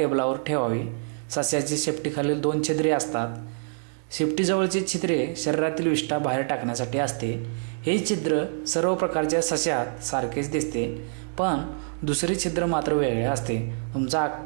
ठेवावी. सस्याची शेपटीखालील 2 छिद्रे असतात. शेपटीजवळची छिद्रे शरीरातील विष्ठा बाहेर टाकण्यासाठी असते. हे छिद्र सर्व प्रकारच्या सस्यात सारखेच दिसते, पण दुसरे छिद्र मात्र वेगळे असते. तुमचा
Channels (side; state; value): left; silent; 59 dB below the other